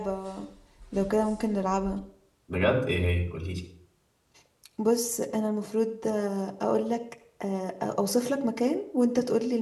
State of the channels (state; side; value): identical; both; correlation 1.00